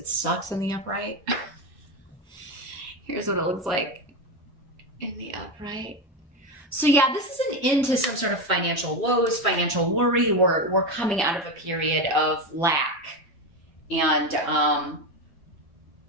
sucks in the upright. Here's what it looks like in the upright. So yeah, this is an end to some sort of financial woes, financial worry. We're coming out of a period of lack. And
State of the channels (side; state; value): both; normal; correlation 0.15